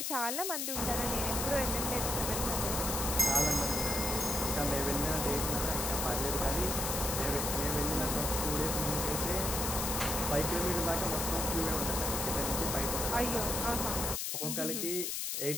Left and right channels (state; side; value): noise; left; hiss, 1 dB below the sound